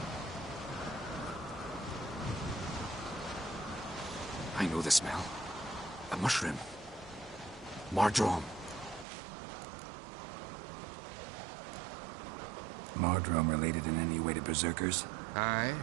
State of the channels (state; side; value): drops out; left; at 9.1 s